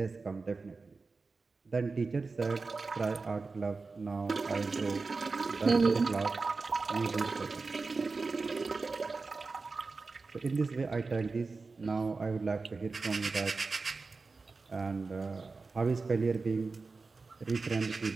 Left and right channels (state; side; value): quieter; left; 4.1 dB